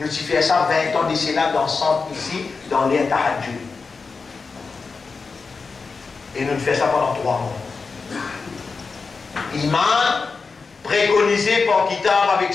avons fait ça 20 ans de cela dans le centre ici, dans l'air Tahajjud. Et nous faisons ça pendant 3 mois. Imam préconisé par Kitab avec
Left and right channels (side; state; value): right; quieter; 4.6 dB